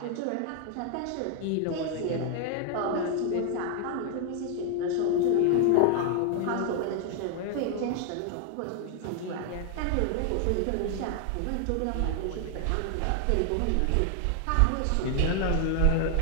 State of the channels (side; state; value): both; different; correlation 0.00